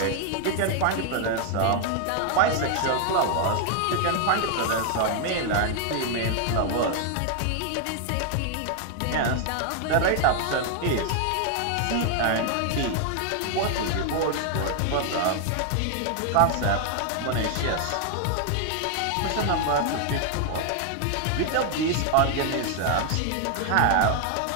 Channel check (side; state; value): both; different; correlation 0.00